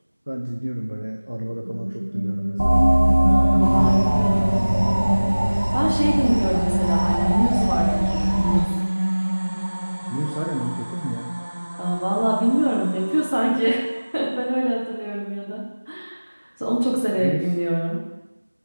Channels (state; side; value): inverted; both; correlation -1.00